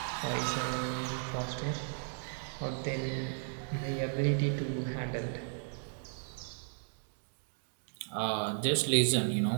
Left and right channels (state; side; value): silent; left; digital silence